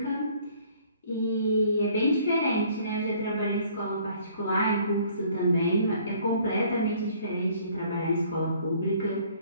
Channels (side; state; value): both; inverted; correlation -0.58